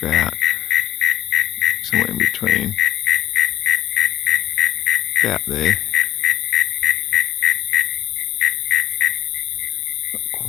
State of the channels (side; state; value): right; quieter; 12.4 dB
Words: about somewhere in between, about there. Not